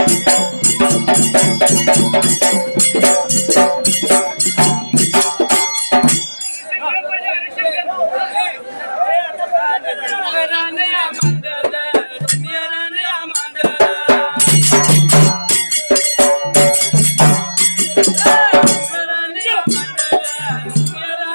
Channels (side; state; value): both; inverted; correlation -1.00